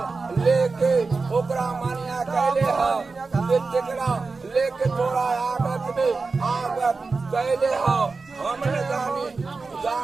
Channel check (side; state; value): left; quieter; 4.1 dB